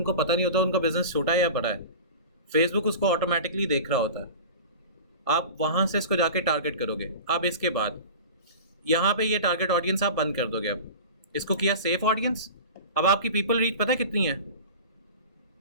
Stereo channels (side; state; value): both; inverted; correlation -0.34